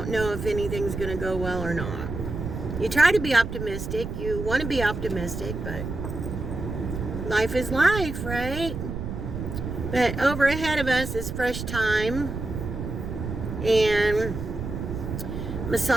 know if anything's going to go well or not. you try to be optimistic. You want to be optimistic, but life is life, right? But over ahead of us is Fresh Time and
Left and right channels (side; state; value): right; noise; rumble, 6 dB below the sound